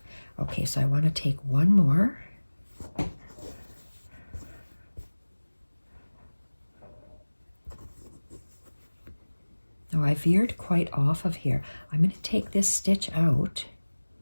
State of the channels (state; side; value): inverted; both; correlation -1.00